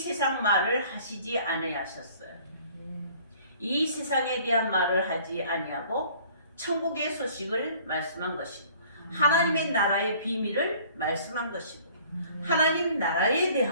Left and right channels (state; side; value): inverted; both; correlation -0.53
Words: 말을 하시지 아니하셨어요. 이 세상에 대한 말을 하지 아니하고 천국의 소식을 말씀한 것이고 하나님의 나라의 비밀을 말씀한 것이고 하나님 나라에